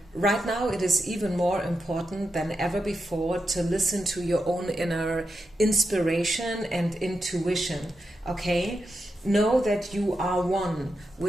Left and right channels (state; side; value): normal; both; correlation 0.87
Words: right now it is even more important than ever before to listen to your own inner inspiration and intuition, okay? Know that you are one